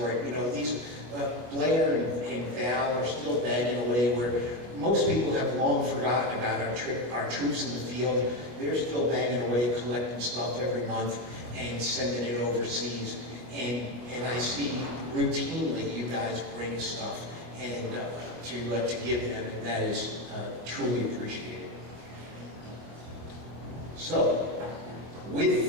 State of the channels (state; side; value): late; left; 24 ms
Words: it. You know, these Blair and Val are still banging away where most people have long forgotten about our troops in the field. They're still banging away, collecting stuff every month and sending it overseas. And I see routinely you guys bring stuff and to give them, and that is truly appreciated. So, with